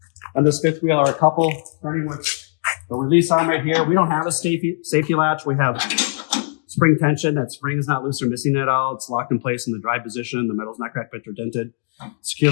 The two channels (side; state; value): right; silent; digital silence